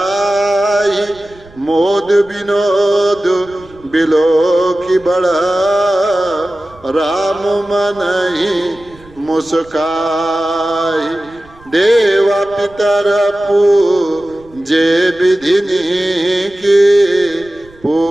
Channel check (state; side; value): noise; right; rumble, 25 dB below the sound